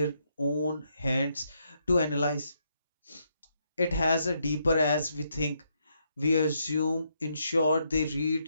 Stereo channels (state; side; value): inverted; both; correlation -0.77